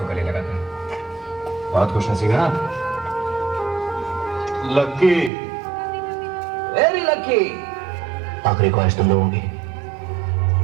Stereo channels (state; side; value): drops out; left; at 5.3 s